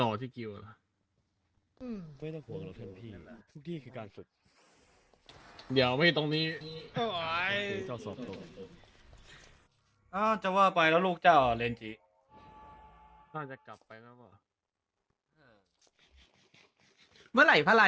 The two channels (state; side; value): identical; both; correlation 1.00